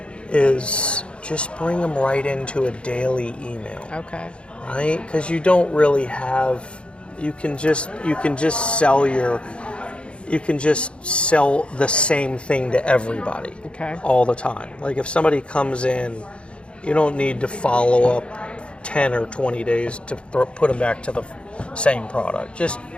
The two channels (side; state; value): right; late; 0.057 ms